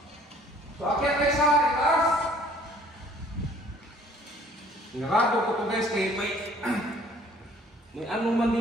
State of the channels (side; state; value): both; normal; correlation 0.57